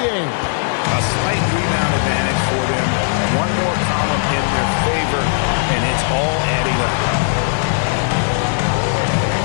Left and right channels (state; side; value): silent; right; digital silence